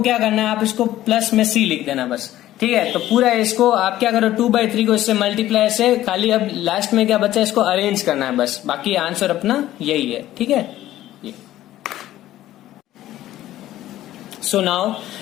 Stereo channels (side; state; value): right; quieter; 14.1 dB